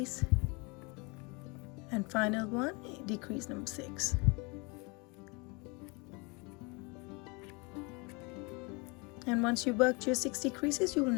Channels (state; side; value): quieter; right; 29.3 dB